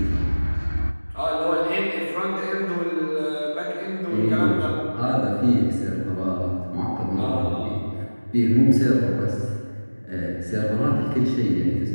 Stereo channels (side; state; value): both; inverted; correlation -1.00